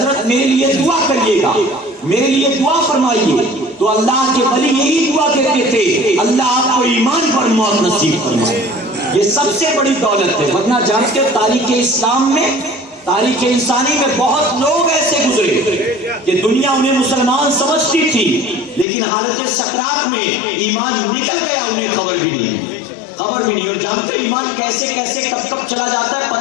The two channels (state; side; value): drops out; right; at 18.9 s